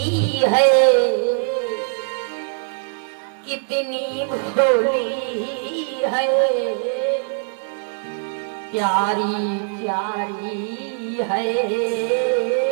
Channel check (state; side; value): silent; left; 65 dB below the other